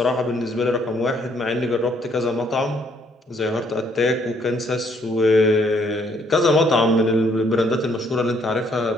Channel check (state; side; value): normal; both; correlation 0.67